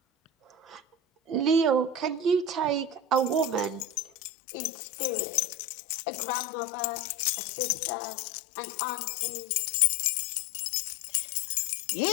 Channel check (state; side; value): drops out; right; at 4.1 s